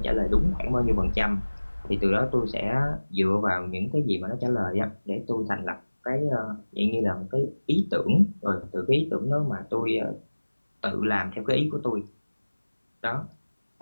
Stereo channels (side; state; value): both; inverted; correlation -1.00